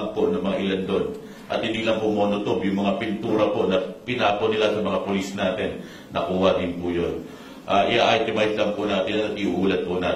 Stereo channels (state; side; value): identical; both; correlation 1.00